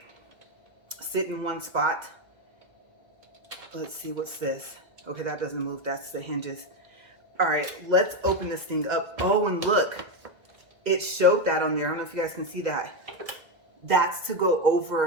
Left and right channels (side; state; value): left; late; 2.0 ms